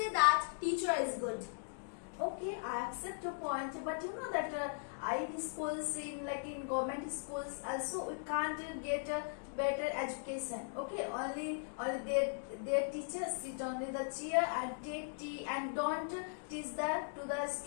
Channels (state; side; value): silent; right; digital silence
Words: that teacher is good. Okay, I accept your point, but you know that in schools, in government schools, also we can't get a better education. Okay, only their teachers sit on the chair and take tea and don't teach that to the